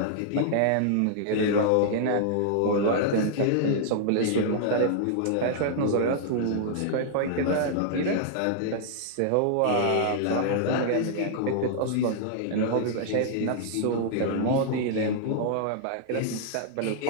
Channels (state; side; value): different; both; correlation -0.01